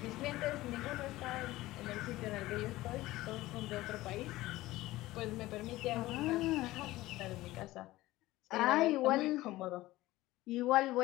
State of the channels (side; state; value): right; quieter; 17.6 dB